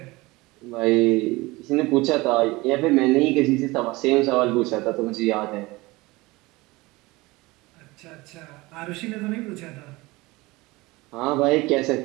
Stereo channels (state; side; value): quieter; left; 21.8 dB